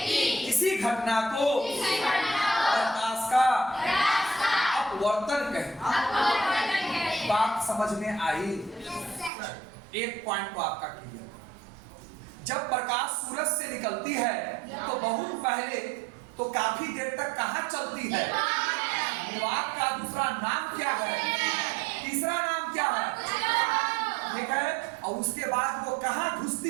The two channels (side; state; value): left; drops out; at 9.3 s